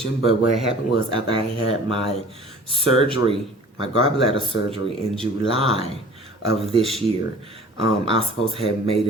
but what happened was, after I had my surgery, my gallbladder surgery in July of this year, I was supposed to have made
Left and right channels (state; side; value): normal; both; correlation 0.47